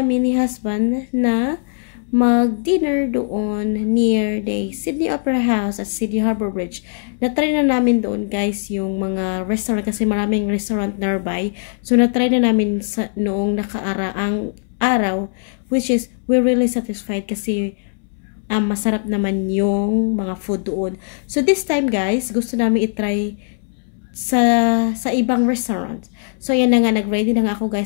ni husband na mag-dinner doon near the Sydney Opera House at Sydney Harbour Bridge. Na-try na namin doon guys yung mga restaurant kasi maraming restaurant nearby. So, na-try na namin noong nakaraang araw, which is we're really satisfied kasi masarap naman yung mga food doon. So this time guys, gusto namin i-try sa ibang restaurant. So yan na nga, nag-ready na nga ako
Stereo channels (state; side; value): silent; right; 66 dB below the other